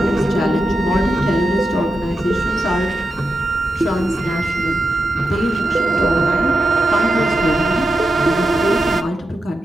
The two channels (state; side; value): normal; both; correlation 0.88